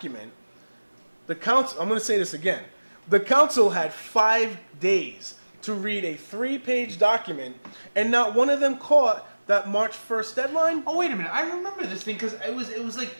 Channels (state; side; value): inverted; both; correlation -1.00